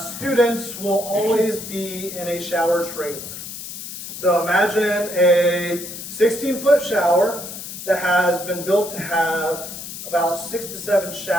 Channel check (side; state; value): left; noise; hiss, 10 dB below the sound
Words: students will always be in a shower trailer. So imagine a 16-foot shower that has been built to have about 6 to 7